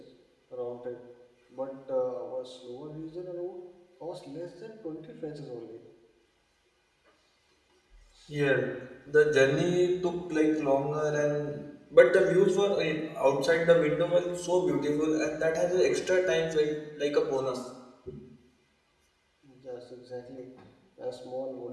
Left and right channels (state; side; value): identical; both; correlation 1.00